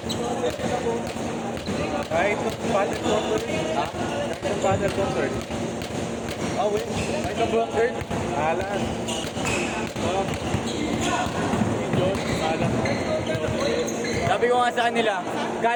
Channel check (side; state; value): both; identical; correlation 1.00